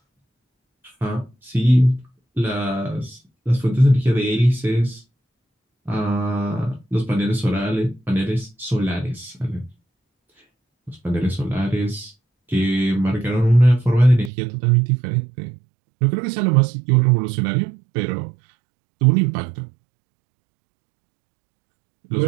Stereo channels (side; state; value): left; drops out; at 14.3 s